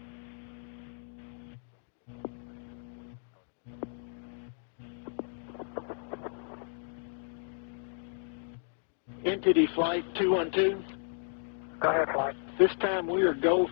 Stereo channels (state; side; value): silent; right; digital silence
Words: NTD flight 212. Go ahead, flight. This time we are go